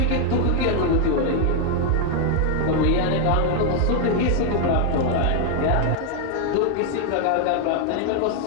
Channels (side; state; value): both; different; correlation 0.00